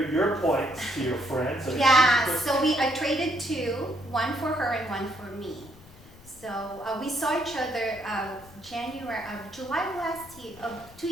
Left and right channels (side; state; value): left; noise; rumble, 22 dB below the sound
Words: points to your friend. So Yeah, so I traded two, one for her and one for me. So we saw each other July last year, 2